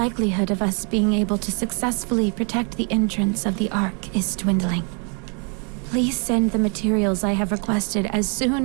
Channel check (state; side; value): quieter; left; 37.5 dB